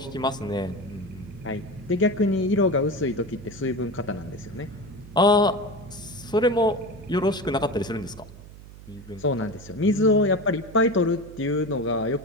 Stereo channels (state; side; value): noise; right; hum, 18 dB below the sound